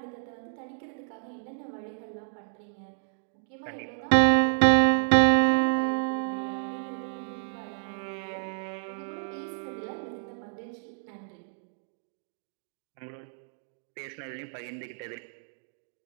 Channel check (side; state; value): left; silent; digital silence